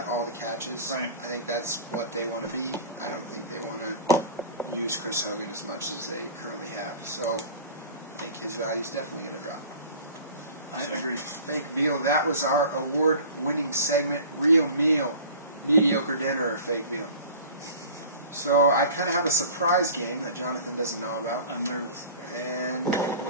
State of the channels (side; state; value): both; inverted; correlation -0.40